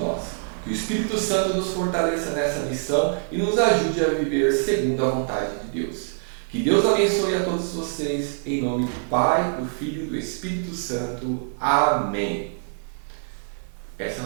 Que o Espírito Santo nos fortaleça nessa missão e nos ajude a viver segundo a vontade de Deus. Que Deus abençoe a todos vocês, em nome do Pai, do Filho e do Espírito Santo. Amém. Essa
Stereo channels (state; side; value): silent; left; digital silence